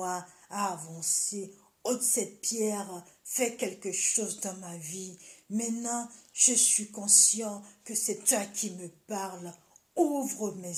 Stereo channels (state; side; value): identical; both; correlation 1.00